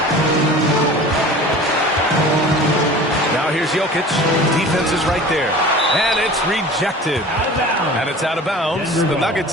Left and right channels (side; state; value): both; normal; correlation 0.40